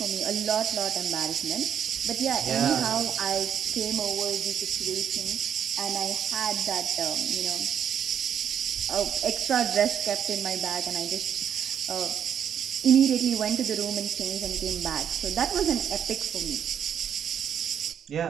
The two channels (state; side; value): quieter; left; 8.6 dB